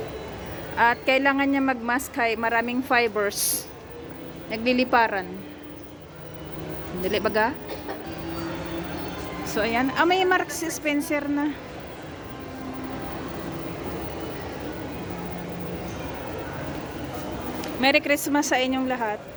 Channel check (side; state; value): both; identical; correlation 1.00